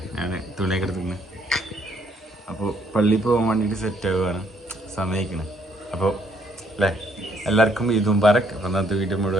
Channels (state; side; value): normal; both; correlation 0.68